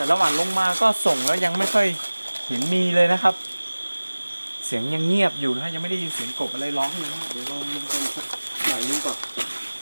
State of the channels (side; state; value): both; inverted; correlation -1.00